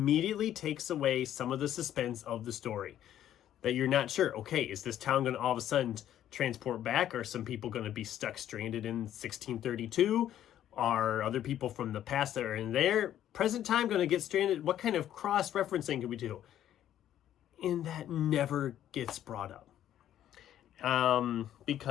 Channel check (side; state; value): right; quieter; 11.4 dB